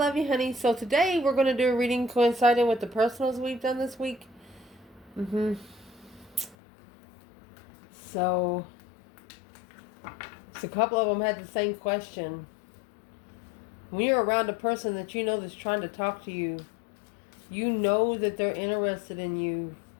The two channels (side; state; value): right; drops out; at 6.6 s